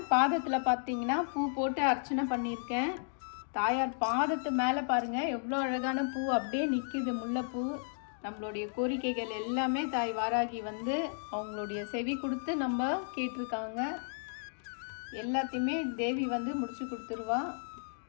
பாதத்தில் பார்த்தீங்கன்னா பூ போட்டு அர்ச்சனை பண்ணியிருக்கேன். தாயார் பாதத்து மேலே பாருங்கள் எவ்வளோ அழகான பூ அப்படியே நிற்கிது, முல்லைப்பூ. நம்மளுடைய கோரிக்கைகள் எல்லாமே தாய் வாராகி வந்து அவங்களுடைய செவி கொடுத்து நம்ம கேட்டிருக்காங்க. எல்லாத்தையுமே தேவி வந்து முடிச்சு கொடுத்துருவா.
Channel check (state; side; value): silent; right; digital silence